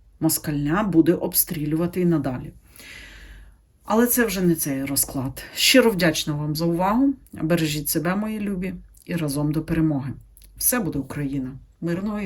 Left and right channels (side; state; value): both; identical; correlation 1.00